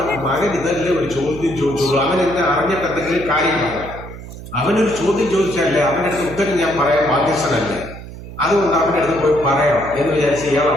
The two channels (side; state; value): right; noise; hum, 13 dB below the sound